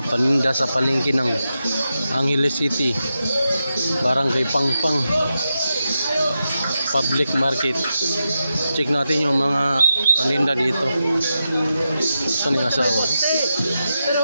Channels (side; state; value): both; inverted; correlation -0.88